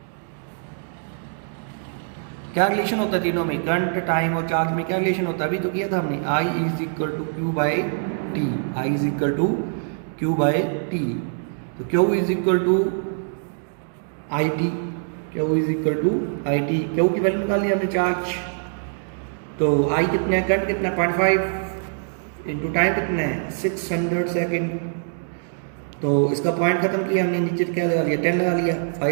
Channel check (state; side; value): silent; left; digital silence